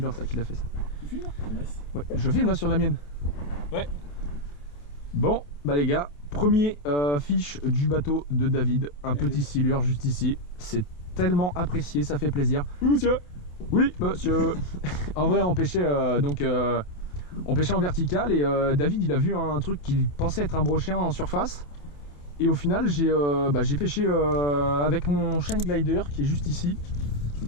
ça qui l'a fait ça. Tu filmes là? Nice. Ouais, je filme là sur la mienne. Ouais. Bon, bah les gars, premier fiche du bateau de David. Un petit silure juste ici. C'est tellement apprécié, ça fait plaisir. Oui monsieur. Oui monsieur. En vrai on pêchait on pêchait en vertical et David il a vu un truc qu'il pensait être un brochet en surface. Et au final j'ai pêché avec mon Shine Glider qui est juste ici.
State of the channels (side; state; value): right; late; 28 ms